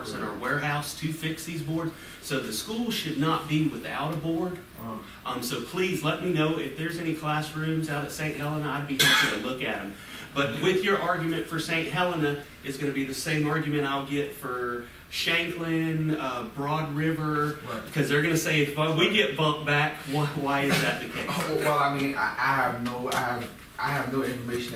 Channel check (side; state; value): both; identical; correlation 1.00